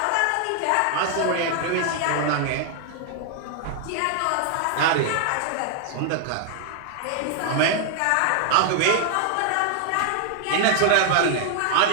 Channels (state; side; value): different; both; correlation 0.00